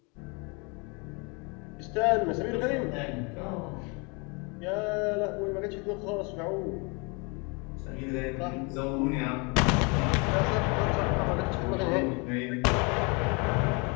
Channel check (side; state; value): right; quieter; 30.9 dB